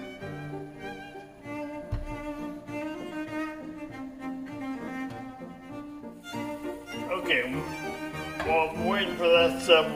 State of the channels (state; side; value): identical; both; correlation 1.00